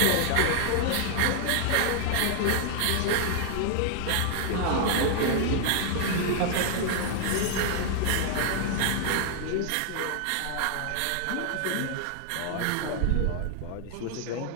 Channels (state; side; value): different; both; correlation -0.01